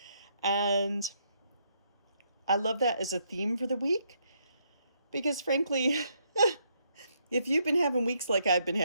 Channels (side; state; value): both; inverted; correlation -0.74